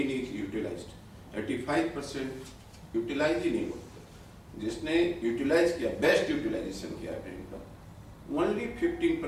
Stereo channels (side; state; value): both; identical; correlation 1.00